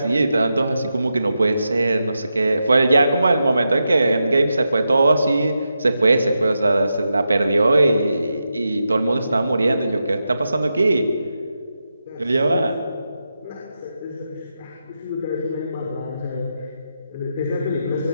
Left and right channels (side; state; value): both; inverted; correlation -0.87